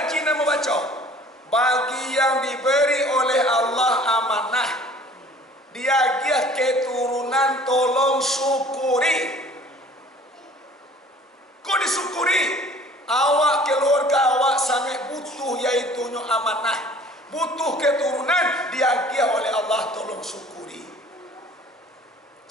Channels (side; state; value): both; normal; correlation 0.50